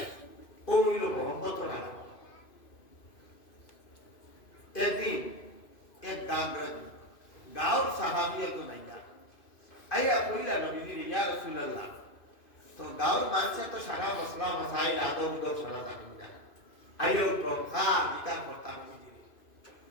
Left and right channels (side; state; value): right; late; 2.5 ms